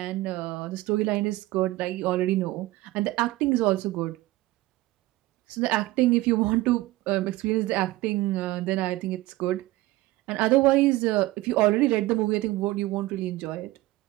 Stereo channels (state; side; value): quieter; left; 18.1 dB